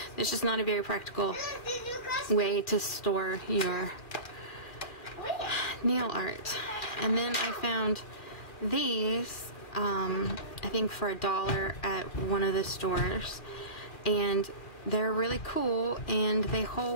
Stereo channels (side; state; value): right; late; 2.4 ms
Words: It's just not a very practical way to store your nail art. And then I found these, I think for $1 at one of the stores, and they're really cool, and they